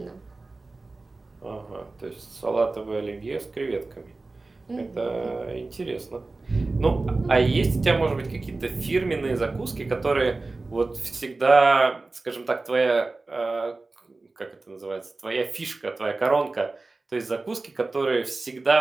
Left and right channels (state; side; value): quieter; left; 3.4 dB